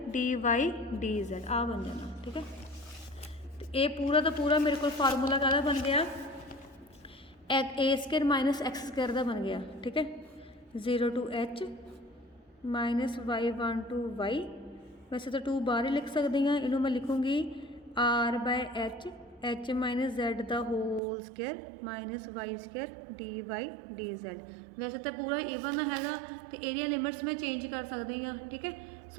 D Y D Z, आ बन जाना, ठीक है। तो ये पूरा का पूरा मेरे को फार्मूला काहदा बन गया, a square minus x square का बन गया, ठीक है। 0 to h minus y1 to y वैसे तो 2 बाहर ही लिख सकती हाँ, इनू मैं लिखूँगी r by h minus Z the whole square minus y square d Y d Z। वैसे तो पूरा ईवन हैगा तो एरिया लिमिट्स मैं चेंज कर सकती हाँ, ठीक है।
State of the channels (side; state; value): left; drops out; at 21.0 s